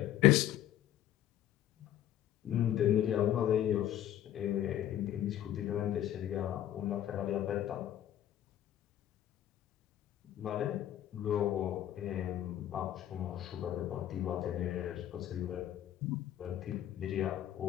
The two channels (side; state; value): right; quieter; 12.0 dB